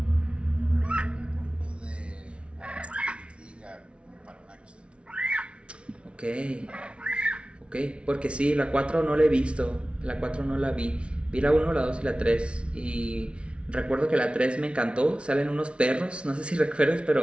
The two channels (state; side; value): late; left; 0.059 ms